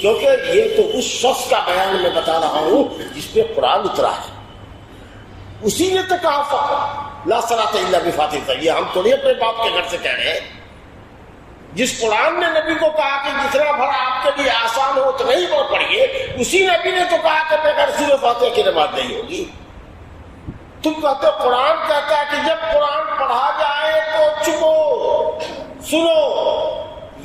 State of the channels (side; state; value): both; identical; correlation 1.00